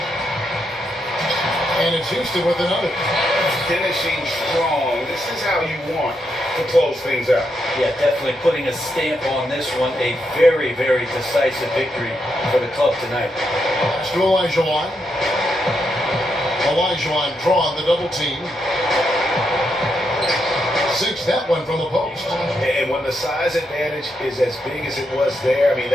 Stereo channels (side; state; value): both; normal; correlation 0.81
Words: And it's Houston with another. Finishing strong. This is how you want to close things out. Yeah, definitely putting a stamp on this one. A very, very decisive victory for the club tonight. Pass to Olajuwon. Olajuwon drawing the double team. Sinks that one from the post. And when the size advantage is as big as it was there, I mean,